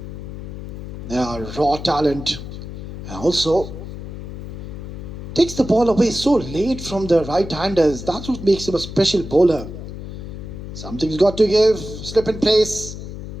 raw talent, and also takes the ball away so late from the right-handers. That's what makes him a special bowler. Something's got to give. Slip in place.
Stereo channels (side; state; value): left; noise; hum, 10 dB below the sound